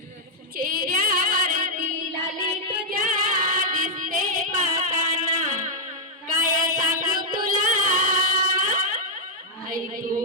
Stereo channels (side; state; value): both; normal; correlation -0.06